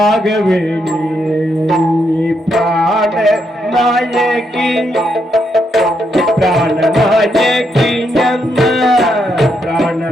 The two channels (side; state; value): both; normal; correlation 0.79